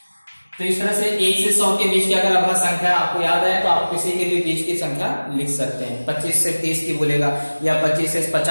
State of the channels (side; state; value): both; inverted; correlation -1.00